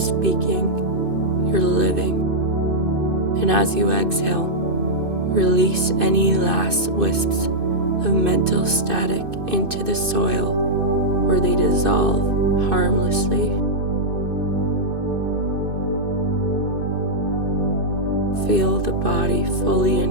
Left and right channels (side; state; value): left; late; 2.5 ms